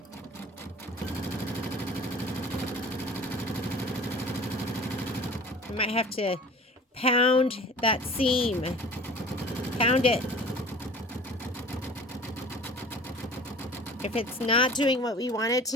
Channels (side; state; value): both; normal; correlation 0.44